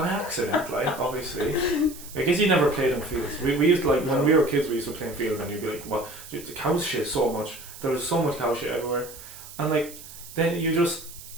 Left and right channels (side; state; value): right; noise; hiss, 15 dB below the sound